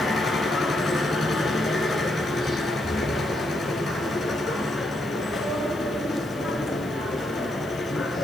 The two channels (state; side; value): noise; left; hiss, 24 dB below the sound